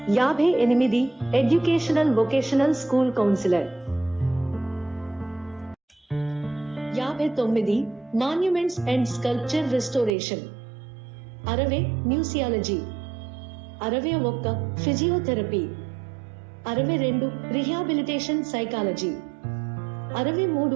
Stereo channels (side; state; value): left; drops out; at 10.1 s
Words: 58. Educational vocational school councillor. 59. Monuments and sculpture restoration. 60. మ్యూసియాలజీ. 61. Physiotherapy. 62. Rehabilitation psychology.